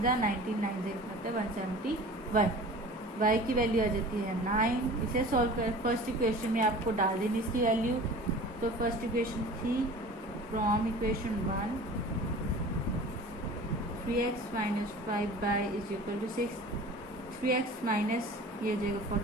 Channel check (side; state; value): both; normal; correlation 0.41